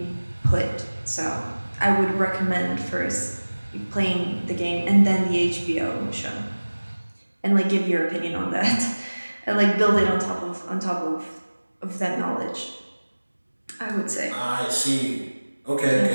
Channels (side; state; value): both; inverted; correlation -1.00